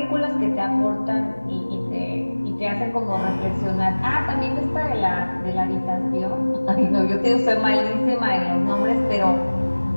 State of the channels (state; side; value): inverted; both; correlation -1.00